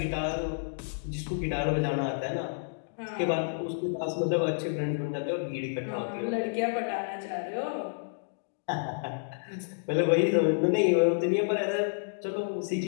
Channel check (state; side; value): silent; right; digital silence